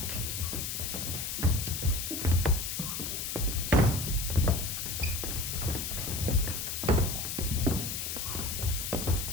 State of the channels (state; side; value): noise; left; hiss, 3 dB below the sound